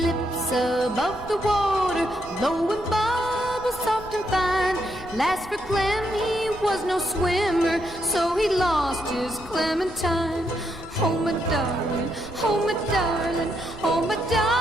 above the water, blowing bubbles soft and fine. Last for Clem, he was no swimmer, so he lost his Clementine. Oh my darling, oh my darling, oh my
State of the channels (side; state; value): left; noise; rumble, 18 dB below the sound